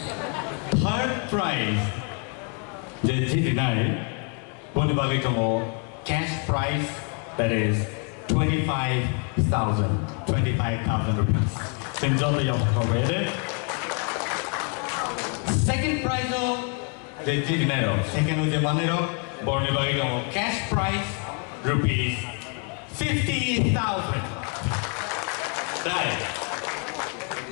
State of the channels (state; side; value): quieter; right; 39.0 dB